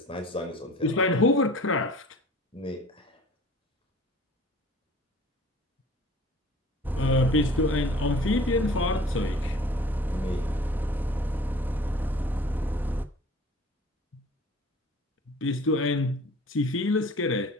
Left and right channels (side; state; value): both; normal; correlation 0.47